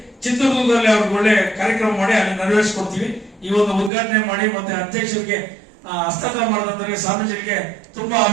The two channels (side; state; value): left; drops out; at 3.9 s